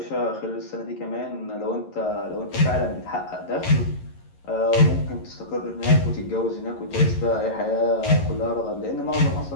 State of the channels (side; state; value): right; late; 11 ms